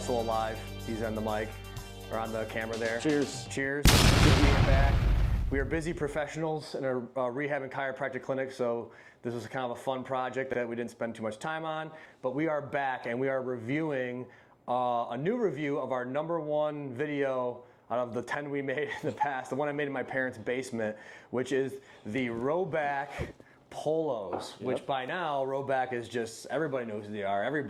alive. He's on the mic, or on the camera there. Cheers. Cheers. Good being back. We are busy professionals in a rehab and chiropractic clinic, so this was kind of a fun project that we didn't spend too much time on. But we are back and we are reviewing a new review of our #1 video out of the 10 we made in the past, the one I made in my parents' basement, which is the RHOBACK Polos, which by now, RHOBACK is just, everybody knows who they are. Every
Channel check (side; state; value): both; identical; correlation 1.00